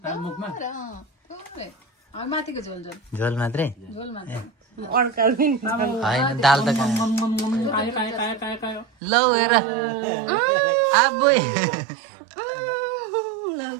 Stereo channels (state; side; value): drops out; left; at 8.8 s